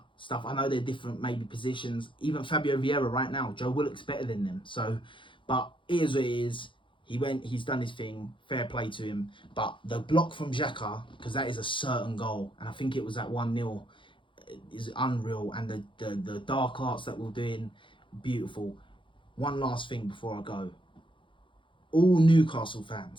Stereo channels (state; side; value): late; right; 0.24 ms